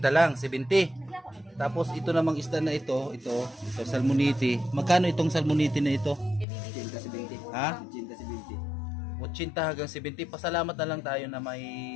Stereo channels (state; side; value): drops out; right; at 6.5 s